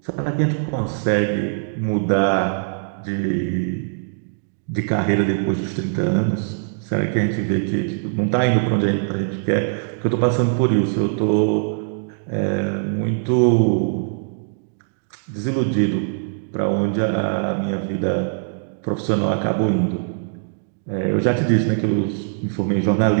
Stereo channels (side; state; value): left; silent; digital silence